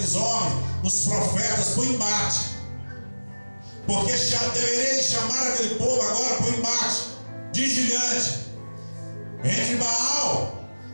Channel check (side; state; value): both; inverted; correlation -1.00